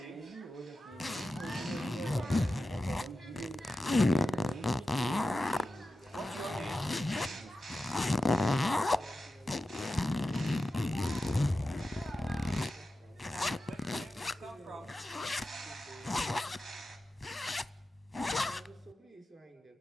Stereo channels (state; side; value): normal; both; correlation 0.92